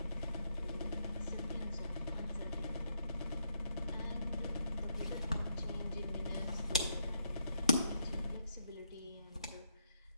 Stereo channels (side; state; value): both; inverted; correlation -0.77